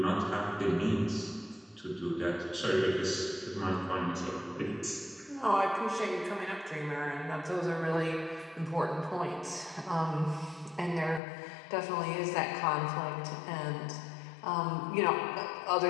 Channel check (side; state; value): right; drops out; at 11.2 s